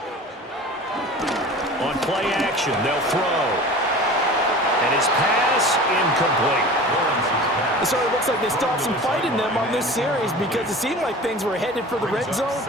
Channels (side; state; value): both; normal; correlation 0.38